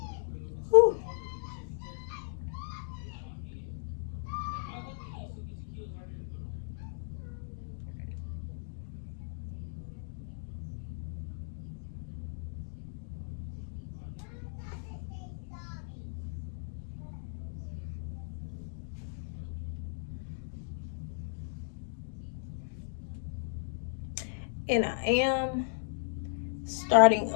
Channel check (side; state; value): right; silent; digital silence